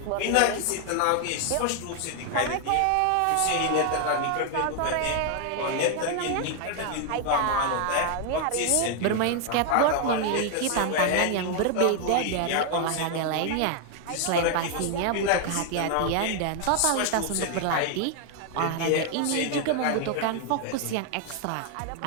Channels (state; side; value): different; both; correlation 0.00